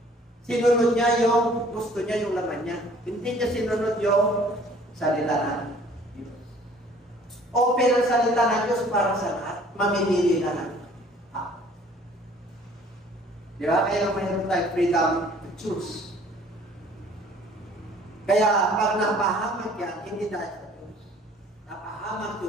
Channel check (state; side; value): normal; both; correlation 0.54